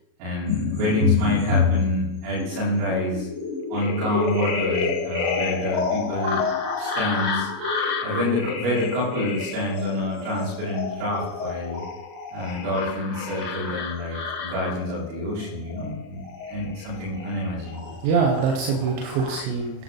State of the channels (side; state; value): left; late; 38 ms